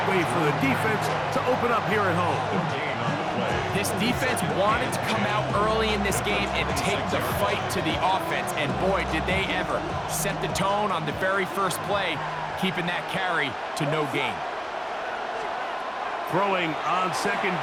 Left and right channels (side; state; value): both; identical; correlation 1.00